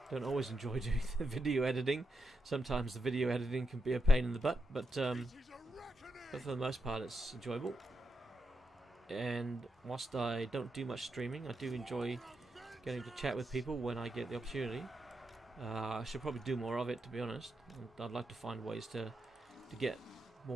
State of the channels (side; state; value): both; normal; correlation 0.85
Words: always enjoy doing the video editing. Sometimes the video editing can be a pain in the butt, but for the most part it's enjoyable. and whilst I don't do much streaming, I do enjoy getting to chat with people when I get the opportunity. I should probably do more of it, to be honest. I'd like to find ways to get